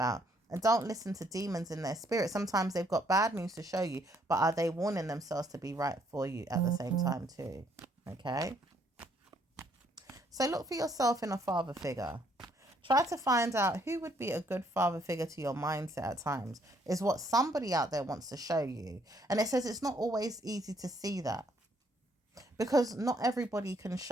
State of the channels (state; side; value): normal; both; correlation 0.68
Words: And don't listen to demons in their spirit. Sometimes they've got bad news to show you, but are they warning themselves to be right for you at the same time too? Okay? So look for yourself in a father figure. Try to find out who would be a good father figure to your mindset at times, is what somebody out there wants to show you. And it says it's not always easy to see that, because not everybody can